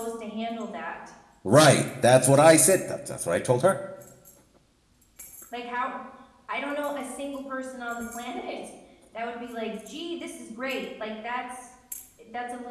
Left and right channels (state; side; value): identical; both; correlation 1.00